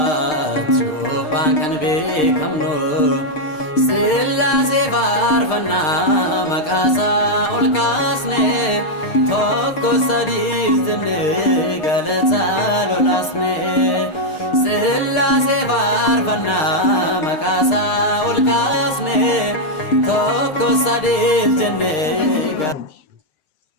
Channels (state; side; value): late; right; 6.6 ms